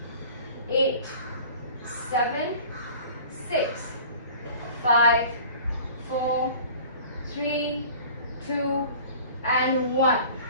8, 7, 6, 5, 4, 3, 2, and 1.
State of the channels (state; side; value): inverted; both; correlation -0.45